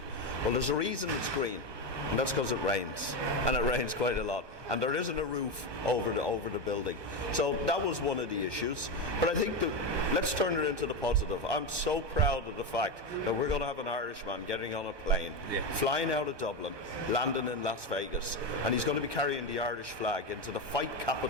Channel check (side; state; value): left; late; 1.1 ms